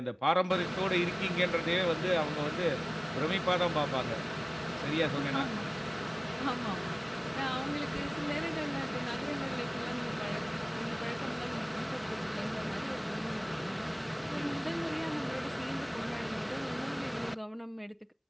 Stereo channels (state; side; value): identical; both; correlation 1.00